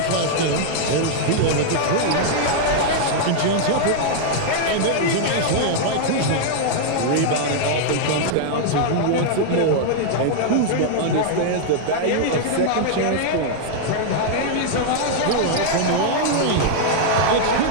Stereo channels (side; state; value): both; different; correlation -0.01